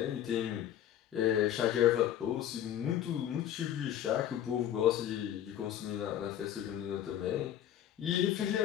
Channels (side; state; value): right; quieter; 10.9 dB